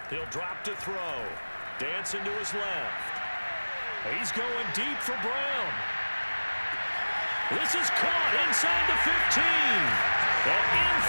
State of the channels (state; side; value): inverted; both; correlation -1.00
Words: He'll drop to throw. Dancing to his left. He's going deep for Brown. This is caught inside the 15. And in